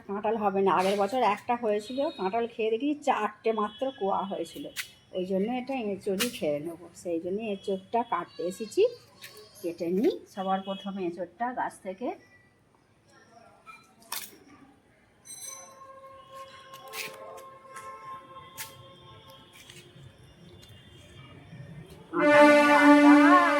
কাঁঠাল হবে না। আগের বছর একটা হয়েছিল, কাঁঠাল খেয়ে দেখি 4টে মাত্র কোয়া হয়েছিল, ওই জন্য এটা এঁচড়ই খেয়ে নেবো। সেই জন্য এঁচড়টা কাটতে এসেছি, কেটে নিই। সবার প্রথমে এঁচড়টা গাছ থেকে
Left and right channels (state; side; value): identical; both; correlation 1.00